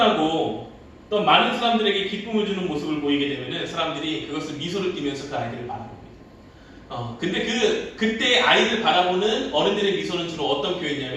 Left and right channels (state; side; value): identical; both; correlation 1.00